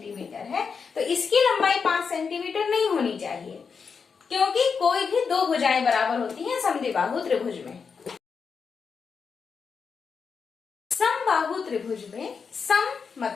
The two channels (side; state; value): right; quieter; 5.7 dB